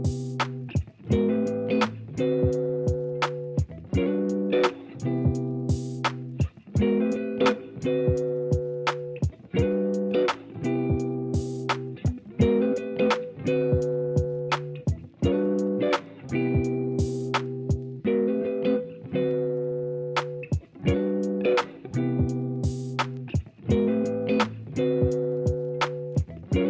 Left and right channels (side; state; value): both; identical; correlation 1.00